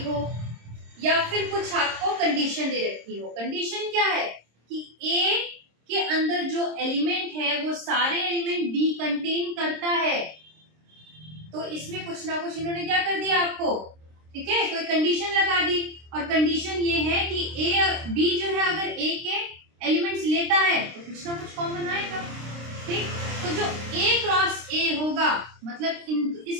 हो या फिर कुछ आपको कंडीशन दे रखी हो। कंडीशन क्या है कि A के अंदर जो एलिमेंट है वो सारे एलिमेंट B कंटेन करता है। तो इसमें कुछ ना कुछ इन्होंने क्या कर दिया आपको, ठीक है, कोई कंडीशन लगा दी। और कंडीशन ये है कि A B जो है अगर A के एलिमेंट्स लेता है तो कुछ ना कुछ कॉमन आएगा। ठीक, तो जो A क्रॉस A होगा मतलब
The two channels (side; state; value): left; late; 26 ms